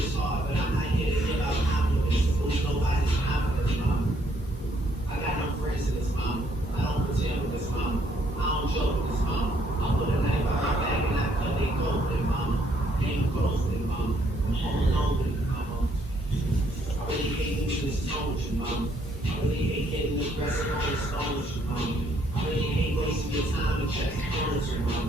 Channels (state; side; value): normal; both; correlation 0.69